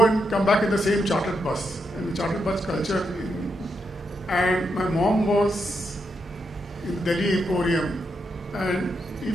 and come back in the same chartered bus, and the chartered bus culture. And my mom was in Delhi Emporium, and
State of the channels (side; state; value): both; normal; correlation 0.82